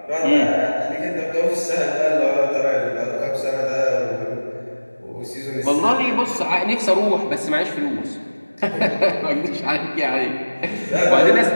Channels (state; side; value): inverted; both; correlation -1.00